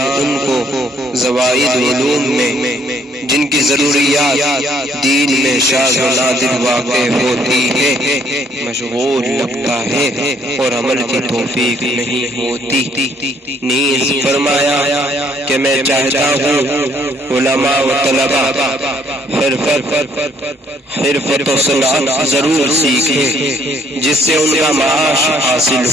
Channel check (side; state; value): both; normal; correlation 0.65